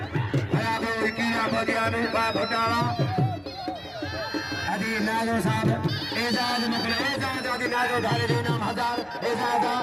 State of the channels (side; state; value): both; identical; correlation 1.00